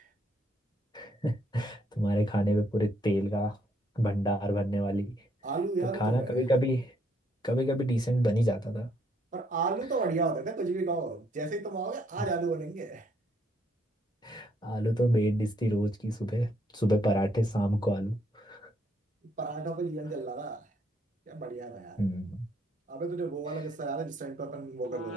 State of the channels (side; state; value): both; normal; correlation 0.70